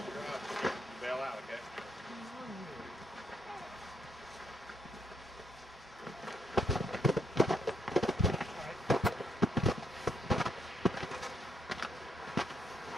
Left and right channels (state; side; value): normal; both; correlation 0.73